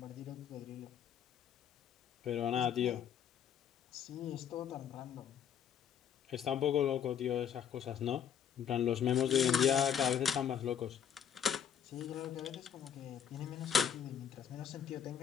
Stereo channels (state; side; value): quieter; right; 8.6 dB